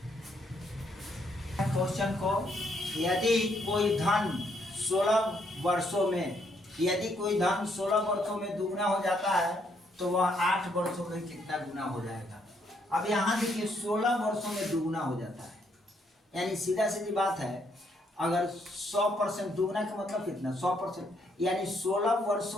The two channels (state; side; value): normal; both; correlation 0.72